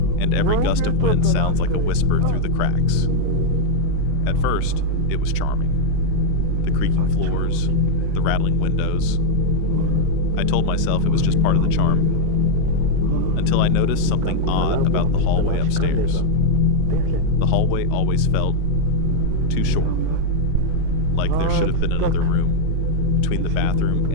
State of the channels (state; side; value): different; both; correlation 0.00